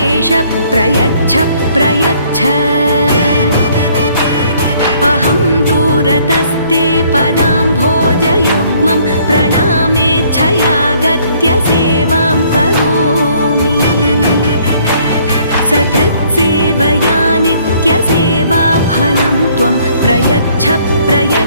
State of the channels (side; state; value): both; inverted; correlation -0.62